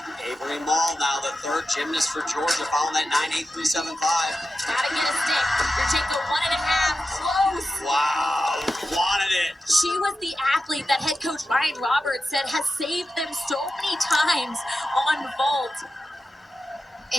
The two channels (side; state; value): both; normal; correlation 0.92